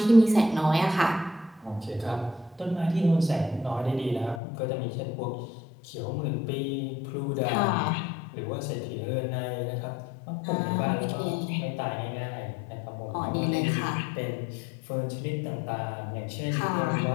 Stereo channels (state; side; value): drops out; right; at 4.4 s